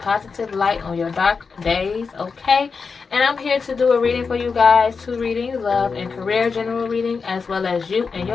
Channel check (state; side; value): quieter; right; 5.1 dB